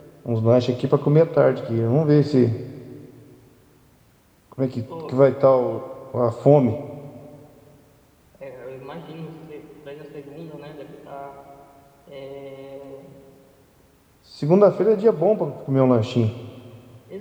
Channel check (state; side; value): identical; both; correlation 1.00